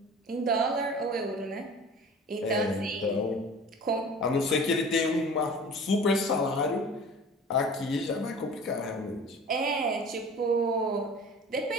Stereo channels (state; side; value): normal; both; correlation 0.41